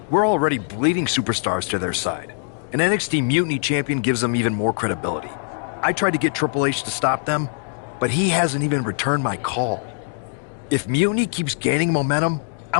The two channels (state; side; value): silent; right; 64 dB below the other